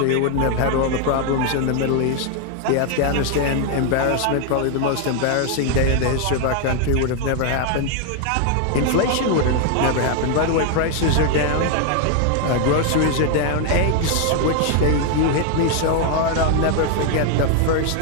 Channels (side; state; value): both; different; correlation 0.01